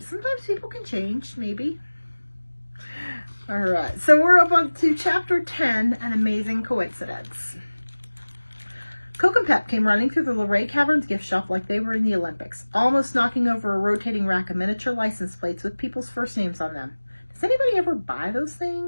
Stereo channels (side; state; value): both; inverted; correlation -1.00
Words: Sometimes people can change. Maybe. All right. So we're up on to chapter 10, An Amazing Coincidence. Coke and Pep came running through the Luray Caverns gift shop like they were in the Olympics, almost knocking over a rotating rack of miniature license plates with people's first names on them. Does anybody ever buy those